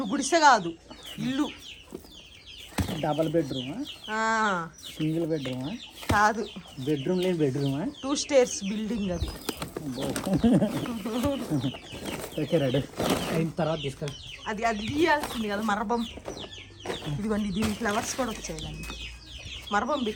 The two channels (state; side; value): identical; both; correlation 1.00